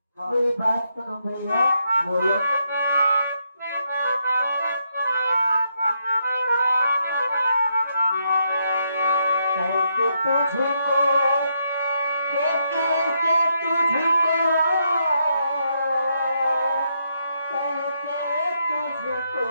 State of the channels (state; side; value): inverted; both; correlation -0.79